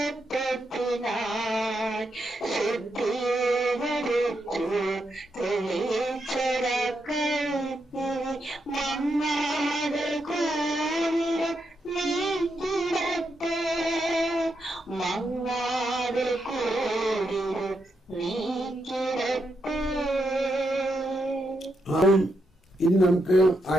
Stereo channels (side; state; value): both; normal; correlation 0.82